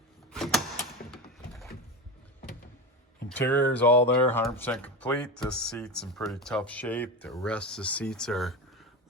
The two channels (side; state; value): both; normal; correlation 0.21